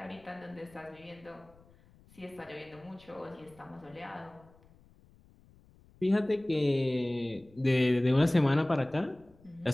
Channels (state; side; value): noise; left; rumble, 27 dB below the sound